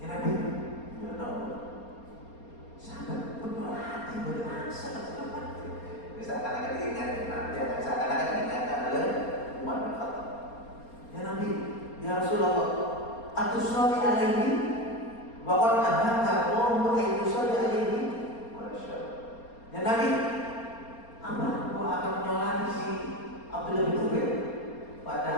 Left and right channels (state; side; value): late; right; 4.3 ms